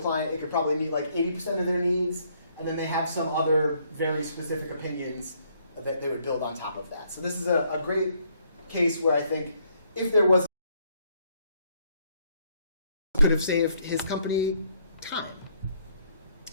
it could probably meet 80% of their needs, and then they have some other very specific opinions that they would build on top of that. So this is a great case where I think if there was, could have saved his company time.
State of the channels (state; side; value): inverted; both; correlation -0.69